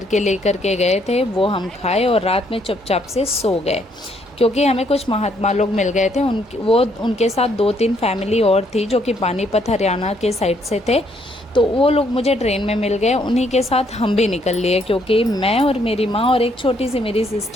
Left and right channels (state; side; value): normal; both; correlation 0.70